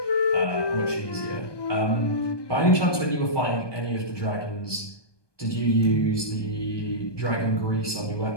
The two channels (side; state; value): right; late; 1.2 ms